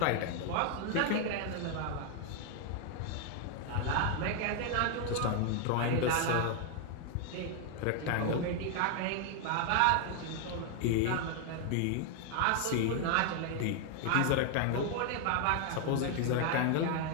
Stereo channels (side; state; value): both; different; correlation 0.00